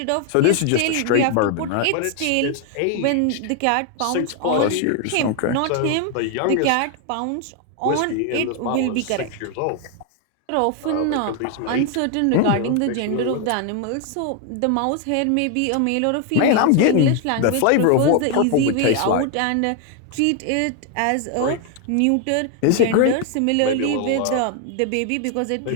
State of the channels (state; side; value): different; both; correlation 0.01